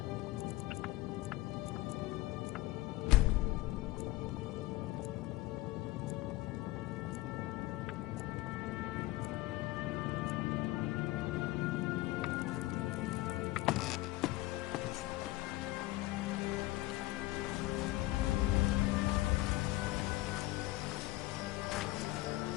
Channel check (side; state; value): right; quieter; 18.2 dB